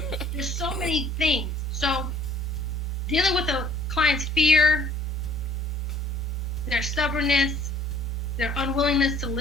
there's so many things. So dealing with a client's fear, their stubbornness, their unwillingness to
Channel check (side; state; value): both; normal; correlation 0.56